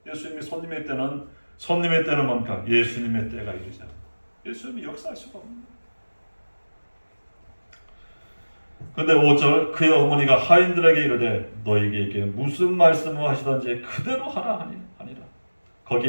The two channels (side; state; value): both; inverted; correlation -1.00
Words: 예수님이 손님의 때는 뭡니까? 예수님의 때가 이르지 않아. 예수님이 역사할 수가 없는 거야. 근데 5절 그의 어머니가 하인들에게 이르되 너희에게 무슨 말씀을 하시던지 그대로 하라 하니라.